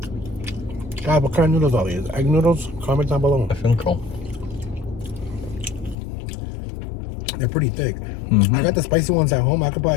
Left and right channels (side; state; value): right; drops out; at 6.0 s